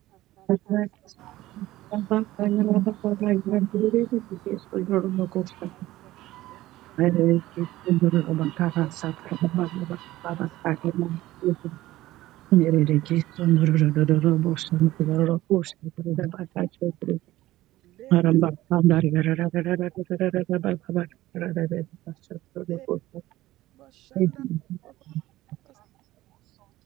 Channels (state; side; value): quieter; left; 16.4 dB